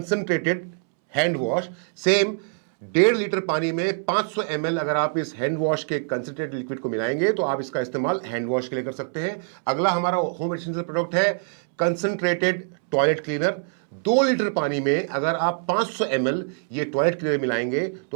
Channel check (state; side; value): silent; left; 62 dB below the other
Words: hand wash. Same 1.5 litre पानी में 500 ml अगर आप इस हैंड वॉश के कंसंट्रेटेड लिक्विड को मिलाएंगे तो आप इसका इस्तेमाल हैंड वॉश के लिए कर सकते हैं। अगला हमारा होम एसेंशियल प्रोडक्ट है कंसंट्रेटेड टॉयलेट क्लीनर। 2 लीटर पानी में अगर आप 500 ml ये टॉयलेट क्लीनर मिलाएंगे